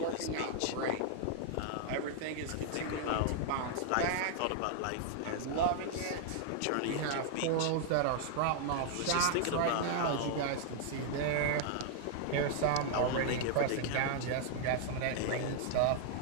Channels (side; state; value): both; different; correlation -0.01